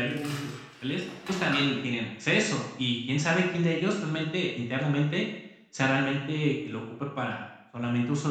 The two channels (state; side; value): identical; both; correlation 1.00